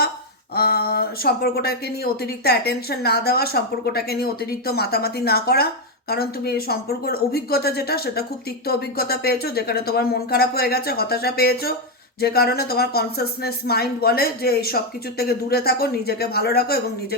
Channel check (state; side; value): normal; both; correlation 0.04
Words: সম্পর্কটাকে নিয়ে অতিরিক্ত অ্যাটেনশন না দেওয়া, সম্পর্কটাকে নিয়ে অতিরিক্ত মাতামাতি না করা, কারণ তুমি এই সম্পর্কের অভিজ্ঞতা যেটা, সেটা খুব তিক্ত অভিজ্ঞতা পেয়েছো, যেখানে তোমার মন খারাপ হয়ে গেছে, হতাশা পেয়েছো, যে কারণে তোমার কনসাসনেস মাইন্ড বলে যে এই সব কিছুর থেকে দূরে থাকো, নিজেকে ভালো রাখো এবং